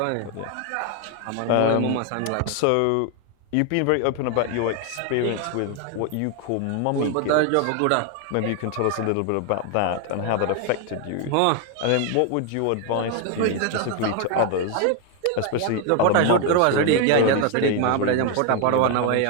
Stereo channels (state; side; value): different; both; correlation 0.01